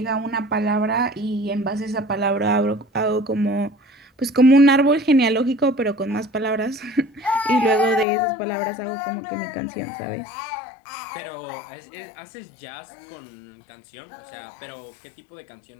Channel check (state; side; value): drops out; right; at 8.1 s